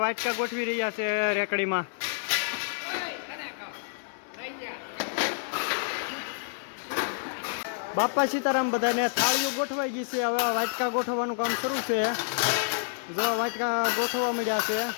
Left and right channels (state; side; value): silent; right; 58 dB below the other